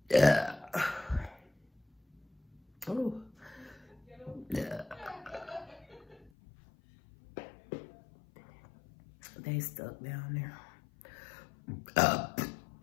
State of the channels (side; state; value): right; drops out; at 6.3 s